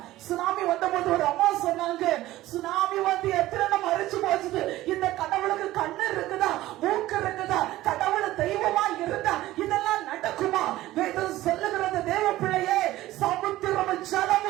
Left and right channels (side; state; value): left; quieter; 16.1 dB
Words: சுனாமி வந்தபோது ஒரு அம்மா சொன்னாங்க, சுனாமி வந்து எத்தனை மறைச்சு போச்சுது, இந்த கடவுளுக்கு கண்ணு இருக்குதா, மூக்கு இருக்குதா, கடவுள் தெய்வமா இருந்தா இதெல்லாம் நடக்குமா? வேதம் சொல்லுகிறது தேவ பிள்ளையே, சமுத்திரம்